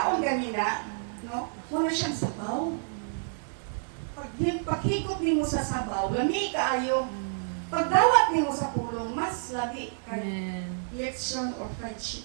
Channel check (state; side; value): silent; left; digital silence